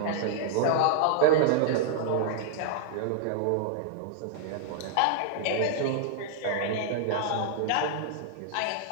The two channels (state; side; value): different; both; correlation -0.01